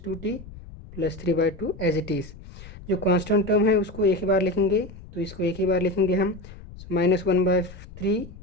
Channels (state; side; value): noise; left; rumble, 16 dB below the sound